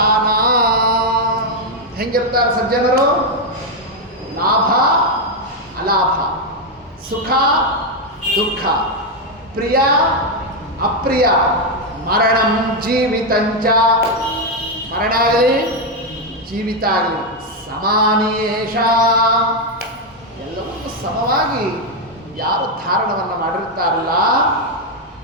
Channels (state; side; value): normal; both; correlation 0.03